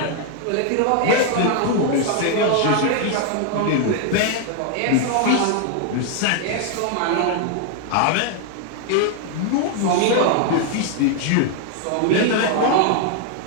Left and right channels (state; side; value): different; both; correlation 0.00